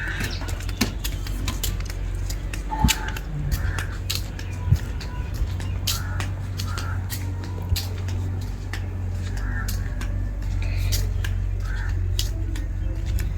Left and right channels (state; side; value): identical; both; correlation 1.00